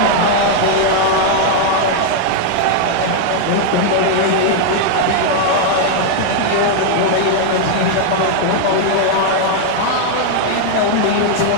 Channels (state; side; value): different; both; correlation 0.00